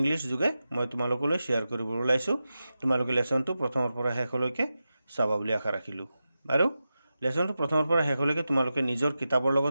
যোগে মই তোমালোকলৈ শ্বেয়াৰ কৰিবলৈ ওলাইছোঁ। তোমালোকে লেছনটো প্ৰথমৰ পৰা শেষলৈকে চাবা বুলি আশা ৰাখিলোঁ। আৰু লেছনটো প্ৰথমৰ পৰা শেষলৈকে তোমালোকে নিজৰ কিতাপৰ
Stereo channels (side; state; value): both; inverted; correlation -0.92